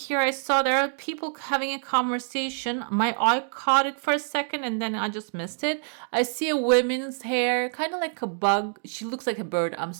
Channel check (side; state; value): left; silent; digital silence